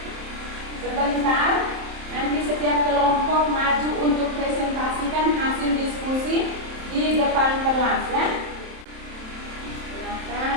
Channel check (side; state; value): left; late; 27 ms